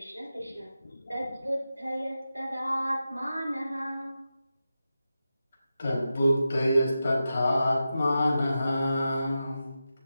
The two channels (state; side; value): inverted; both; correlation -0.91